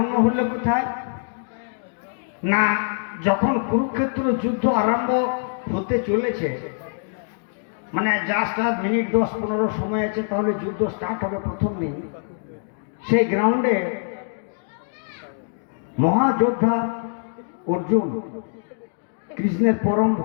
হলে কোথায় না, যখন কুরুক্ষেত্র যুদ্ধ আরম্ভ হতে চলেছে, মানে জাস্ট আর মিনিট 10-15 সময় আছে, তাহলে যুদ্ধ স্টার্ট হবে প্রথম দিন। সেই গ্রাউন্ডে মহাযোদ্ধা অর্জুন, কৃষ্ণের পরম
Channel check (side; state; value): right; silent; digital silence